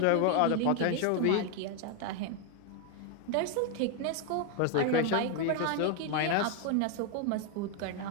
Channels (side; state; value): both; different; correlation 0.01